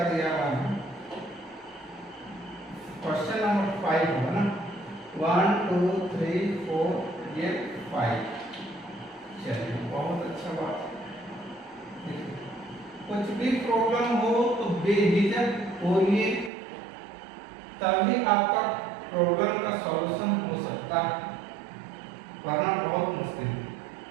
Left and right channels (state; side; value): drops out; left; at 16.5 s